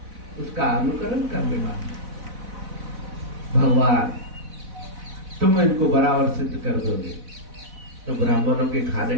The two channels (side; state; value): left; late; 4.0 ms